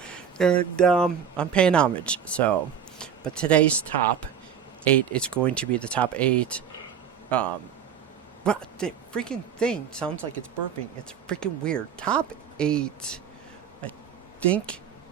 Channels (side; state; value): left; quieter; 7.8 dB